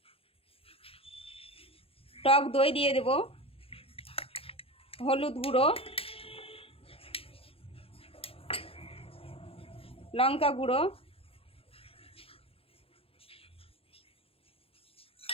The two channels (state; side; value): late; right; 0.27 ms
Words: টক দই দিয়ে দেব, হলুদ গুঁড়ো, লঙ্কা গুঁড়ো,